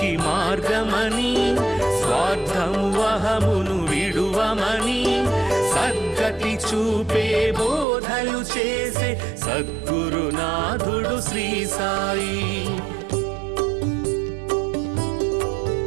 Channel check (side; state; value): left; drops out; at 7.9 s